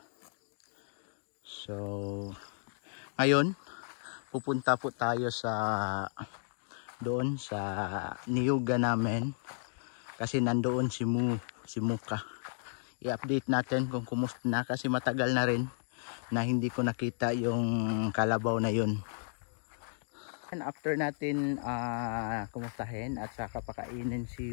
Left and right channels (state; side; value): silent; right; digital silence